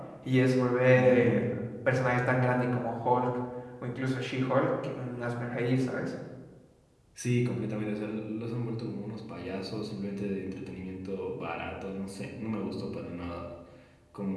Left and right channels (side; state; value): both; identical; correlation 1.00